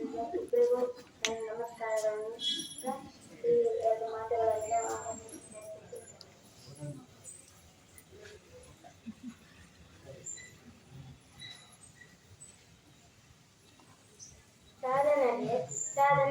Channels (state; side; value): identical; both; correlation 1.00